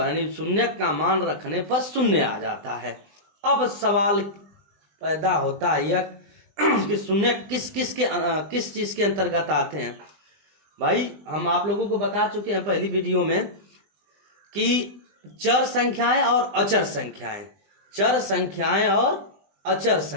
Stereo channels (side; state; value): left; late; 20 ms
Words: यानी शून्यक का मान रखने पर शून्य आ जाता है। अब सवाल पैदा होता है यह कि शून्य किस चीज के अंतर्गत आते हैं। भाई हम आप लोगों को बता चुके हैं पहली वीडियो में कि चर संख्याएं और अचर संख्याएं, चर संख्याएं और अचर